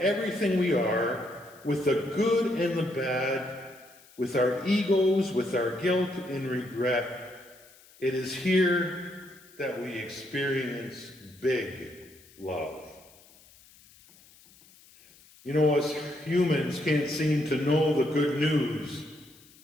we are, with the good and the bad, with our egos, with our guilt and regret, it is here that we experience big love. You know, us humans can't seem to know the good news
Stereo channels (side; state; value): left; noise; hiss, 26 dB below the sound